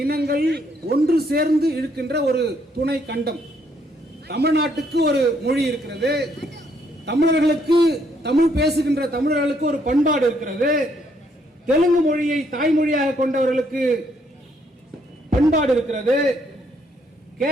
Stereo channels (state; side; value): normal; both; correlation 0.70